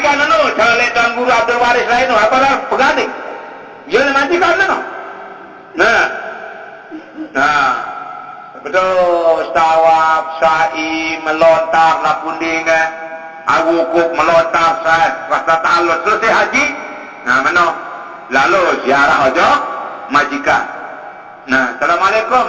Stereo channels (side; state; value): both; identical; correlation 1.00